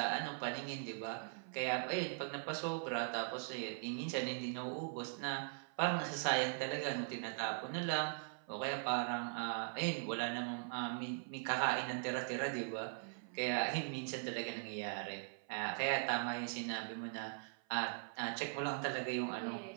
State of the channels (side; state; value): left; silent; 50 dB below the other